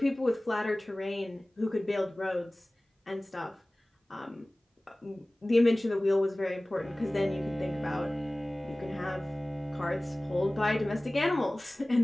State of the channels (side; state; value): both; normal; correlation 0.98